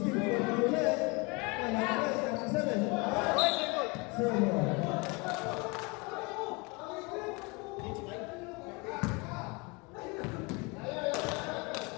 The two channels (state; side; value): quieter; right; 28.0 dB